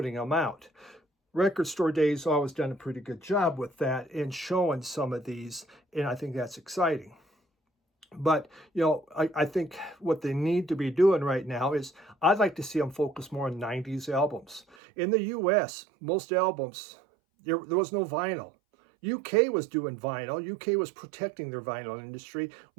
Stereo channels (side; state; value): left; drops out; at 14.8 s